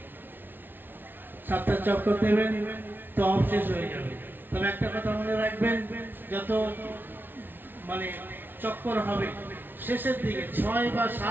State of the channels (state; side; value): late; left; 0.096 ms